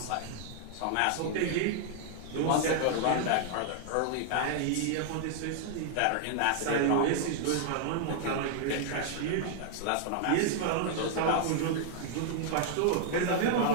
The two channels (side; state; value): both; different; correlation 0.00